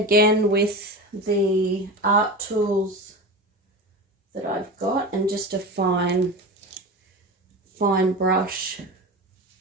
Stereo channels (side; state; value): both; normal; correlation 0.27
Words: with the art tools that I've got, and just a fine brush.